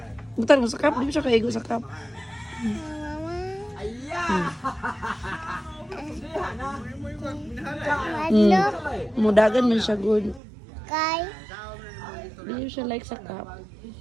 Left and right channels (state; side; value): drops out; left; at 10.4 s